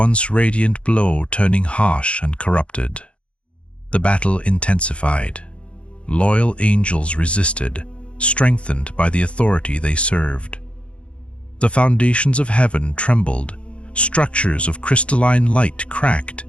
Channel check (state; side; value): late; right; 0.060 ms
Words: radiant glow turning harsh and corrupted. The battle intensified. Loyal angels resisted, strengthened by the authority they served. The foundations of heaven trembled, structures of crystalline light cracked,